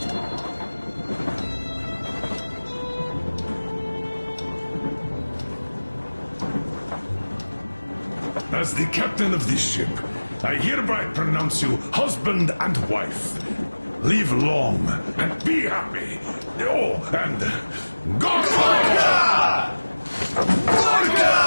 As the captain of this ship, I hereby pronounce you husband and wife. Live long and be happy. Oh, and Gorka!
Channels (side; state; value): both; inverted; correlation -1.00